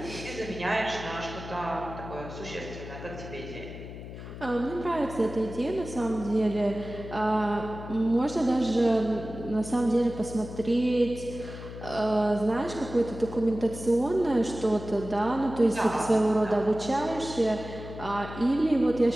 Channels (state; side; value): noise; left; hum, 11 dB below the sound